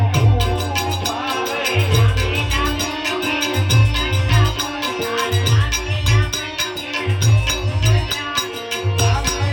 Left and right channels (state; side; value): identical; both; correlation 1.00